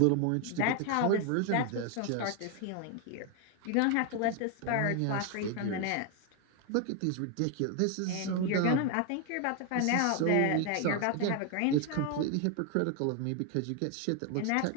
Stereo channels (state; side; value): different; both; correlation 0.01